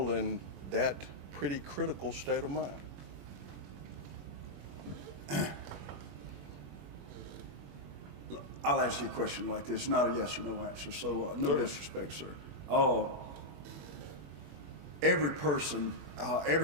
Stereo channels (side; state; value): left; late; 21 ms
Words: in that pretty critical state of mind? I'll answer your question like this, not a yes or no answer, so no Sure. disrespect, sir. Every person,